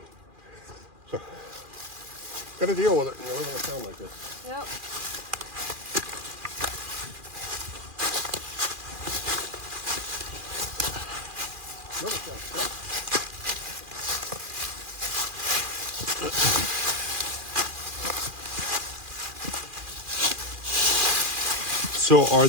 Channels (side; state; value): left; late; 2.4 ms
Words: So, got to deal with it. You know, it's going to sound like this. Yep. Another sound. So are